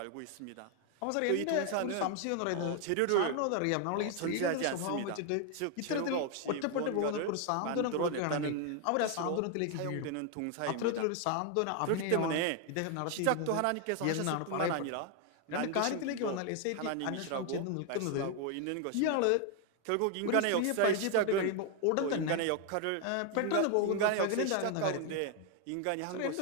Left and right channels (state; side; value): different; both; correlation 0.01